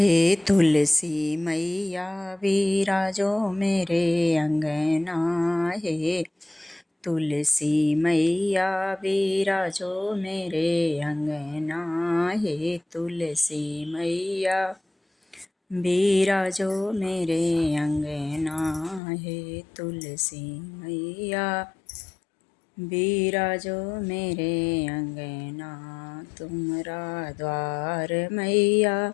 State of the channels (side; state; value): right; drops out; at 19.0 s